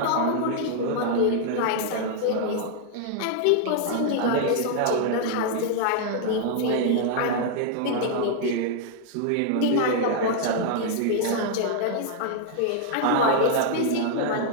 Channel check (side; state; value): both; different; correlation -0.01